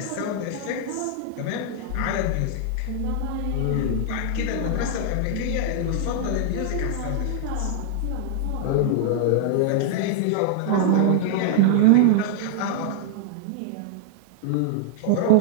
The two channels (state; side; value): different; both; correlation -0.01